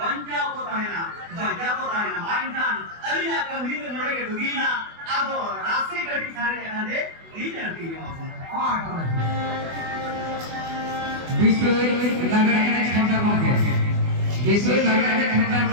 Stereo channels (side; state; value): left; late; 24 ms